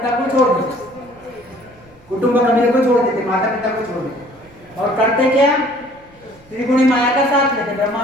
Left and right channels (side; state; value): right; noise; rumble, 27 dB below the sound